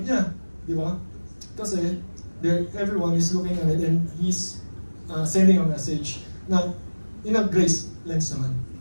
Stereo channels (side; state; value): both; inverted; correlation -1.00